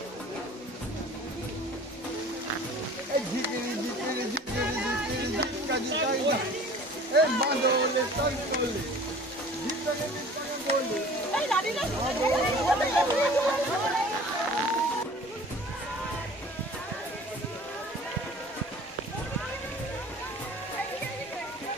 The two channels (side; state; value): both; normal; correlation 0.46